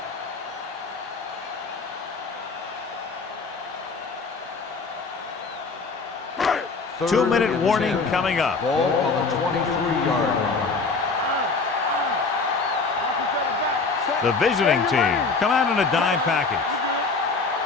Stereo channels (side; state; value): right; quieter; 4.3 dB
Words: Third 2-minute and warning 10. coming up. Ball on the 23-yard line. Watch each other back. The visiting team come out in a dime package. You